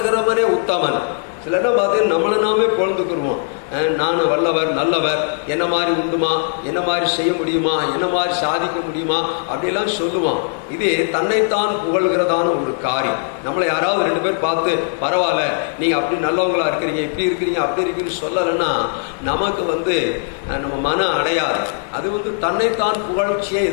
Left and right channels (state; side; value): silent; right; 67 dB below the other